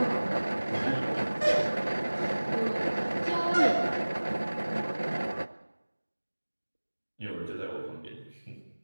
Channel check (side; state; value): both; inverted; correlation -1.00